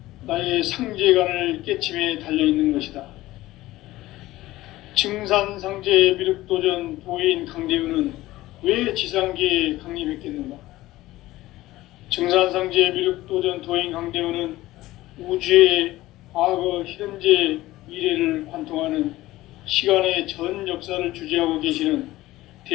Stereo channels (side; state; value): right; quieter; 17.0 dB